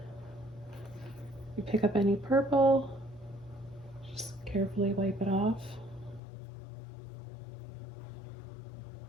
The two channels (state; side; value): drops out; right; at 6.2 s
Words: You pick up any purple, just carefully wipe it off.